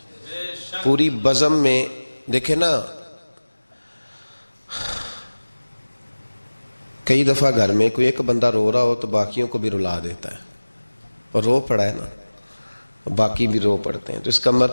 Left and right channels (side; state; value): both; inverted; correlation -1.00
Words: پوری بزم میں دیکھیں نا, کئی دفعہ گھر میں کوئی ایک بندہ رو رہا ہو تو باقیوں کو بھی رلا دیتا ہے, اور رو پڑا ہے نا, باقی بھی رو پڑتے ہیں. تو اس کا